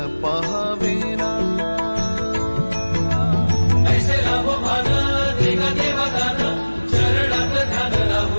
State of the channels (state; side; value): inverted; both; correlation -1.00